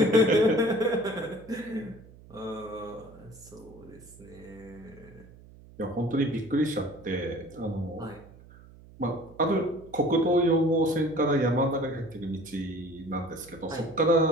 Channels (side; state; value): right; noise; hum, 22 dB below the sound